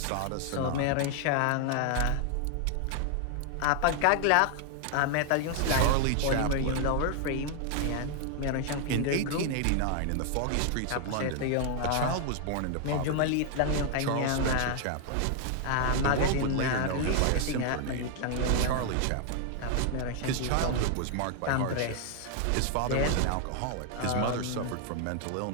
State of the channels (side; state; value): both; different; correlation 0.00